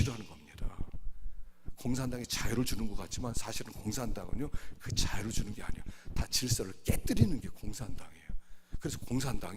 겁니다. 공산당이 자유를 주는 것 같지만 사실은 공산당은요 그 자유를 주는 게 아니에요. 다 질서를 깨뜨리는 게 공산당이에요. 그래서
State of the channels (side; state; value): both; identical; correlation 1.00